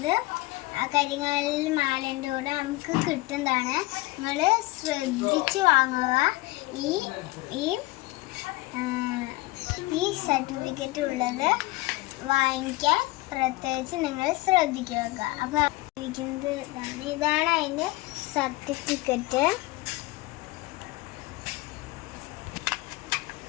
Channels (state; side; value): quieter; right; 20.6 dB